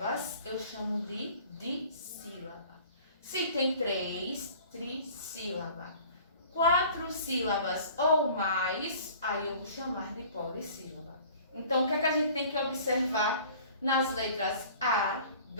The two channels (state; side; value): inverted; both; correlation -0.47